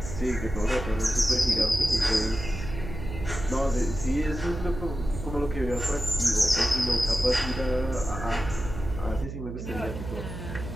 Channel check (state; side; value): noise; right; hum, 8 dB below the sound